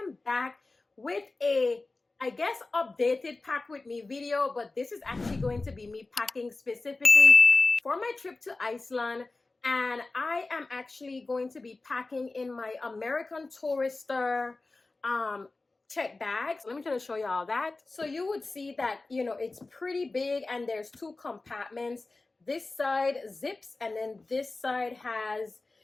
back with a, I guess, updated pack with me video, but this is actually going to be me packing specifically for my trip to Iceland. And I am actually going to be packing in my American Tourister check bags. Let me try to show y'all that. So you would see that, it's pretty big and there's two compartments. This side zips and then this side has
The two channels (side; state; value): right; quieter; 3.4 dB